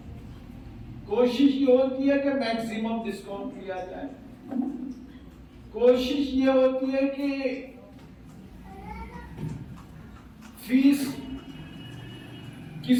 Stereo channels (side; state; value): both; identical; correlation 1.00